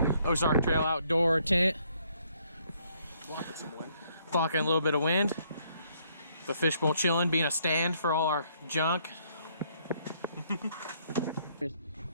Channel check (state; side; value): inverted; both; correlation -0.68